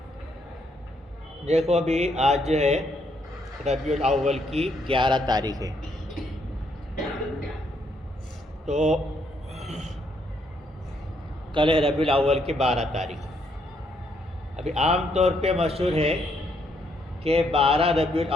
دیکھو ابھی آج جو ہے ربیع الاول کی 11 تاریخ ہے، تو کل ہے ربیع الاول کی 12 تاریخ۔ ابھی عام طور پہ مشہور ہے کہ 12 ربیع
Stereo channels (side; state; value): both; normal; correlation 0.73